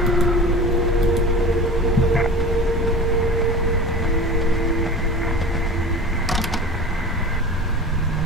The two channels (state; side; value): normal; both; correlation 0.33